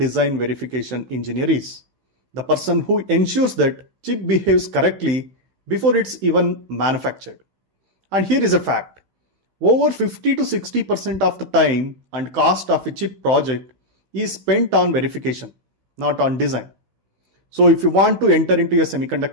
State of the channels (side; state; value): left; late; 16 ms